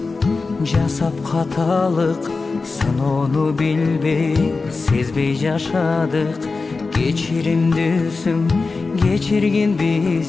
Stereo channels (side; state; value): right; quieter; 4.0 dB